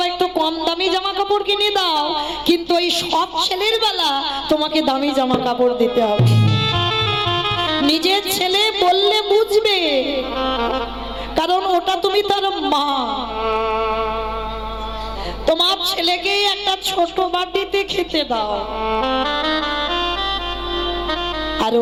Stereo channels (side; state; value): both; identical; correlation 1.00